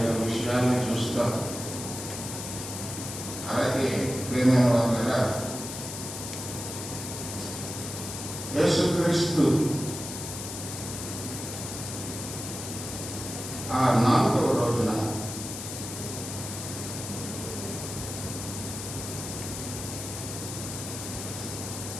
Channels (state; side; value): noise; left; hiss, 7 dB below the sound